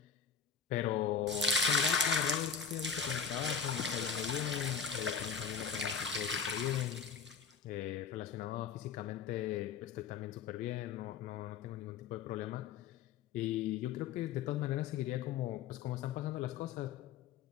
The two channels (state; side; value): quieter; right; 6.6 dB